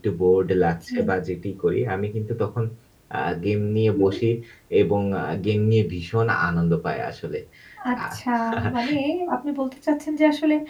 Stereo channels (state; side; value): identical; both; correlation 1.00